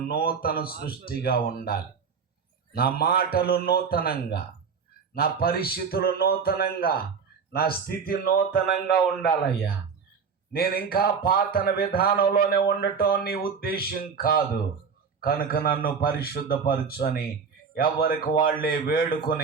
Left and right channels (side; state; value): left; quieter; 5.9 dB